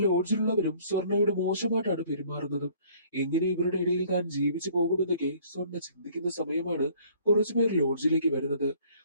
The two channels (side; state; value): both; inverted; correlation -0.57